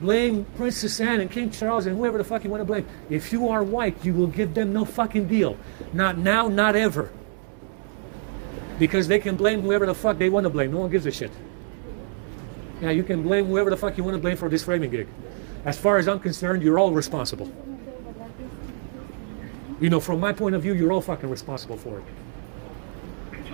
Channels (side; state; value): left; silent; 62 dB below the other